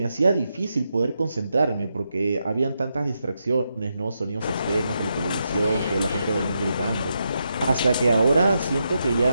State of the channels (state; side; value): inverted; both; correlation -0.84